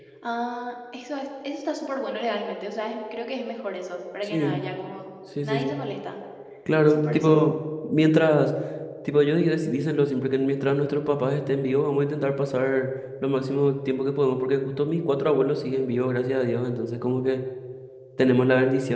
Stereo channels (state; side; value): identical; both; correlation 1.00